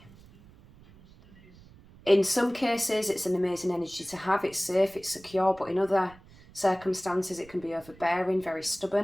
In some cases, it's an amazing energy to have. It's safe, it's secure, but in other circumstances, it can be overbearing, very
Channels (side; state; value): right; noise; rumble, 24 dB below the sound